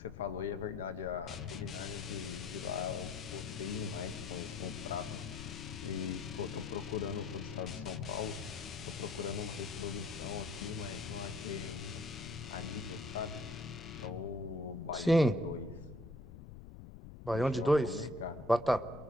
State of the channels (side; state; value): left; noise; rumble, 12 dB below the sound